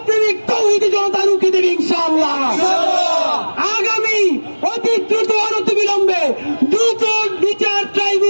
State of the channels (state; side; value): inverted; both; correlation -1.00